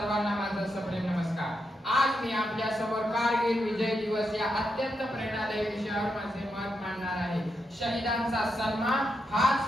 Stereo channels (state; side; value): normal; both; correlation 0.84